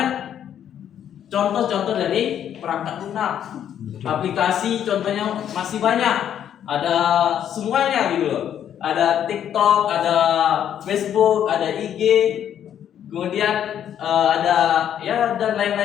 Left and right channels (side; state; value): right; quieter; 9.8 dB